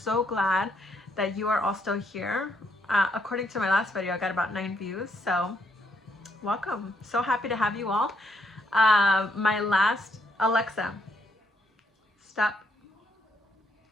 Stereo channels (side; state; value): both; normal; correlation 0.73